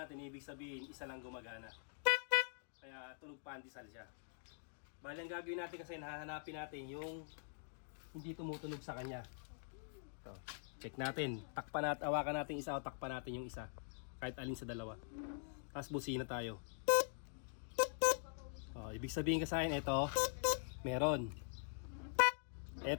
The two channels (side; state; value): right; silent; digital silence